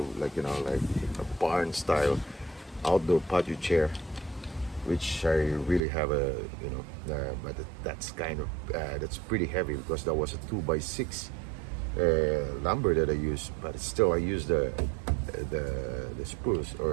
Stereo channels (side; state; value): left; drops out; at 5.8 s